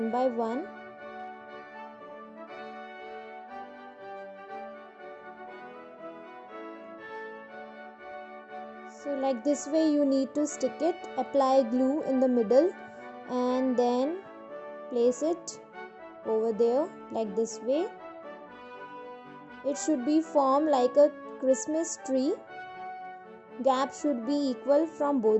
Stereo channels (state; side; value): identical; both; correlation 1.00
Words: by one. So like this way you need to stick it, apply glue in the middle and then place it over there like this way. It should be formed like a Christmas tree. Gap should be equal from